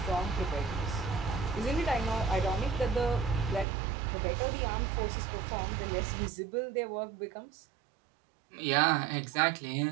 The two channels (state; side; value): drops out; left; at 3.7 s